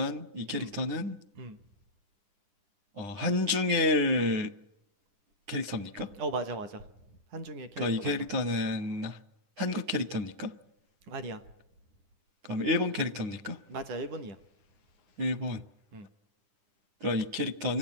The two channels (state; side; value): late; left; 9.9 ms